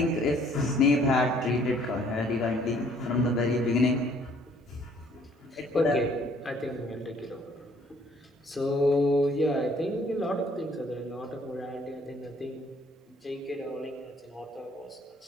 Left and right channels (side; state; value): both; normal; correlation 0.60